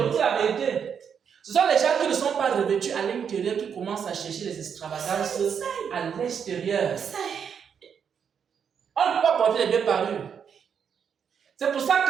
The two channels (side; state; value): left; quieter; 7.4 dB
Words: vous dis la vérité. Ce sont les gens qui ne sont pas revêtus à l'intérieur qui commencent à chercher les extravagances à l'extérieur. On ne peut pas porter les deux parures. C'est pour ça